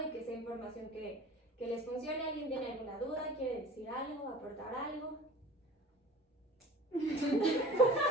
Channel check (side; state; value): both; normal; correlation 0.42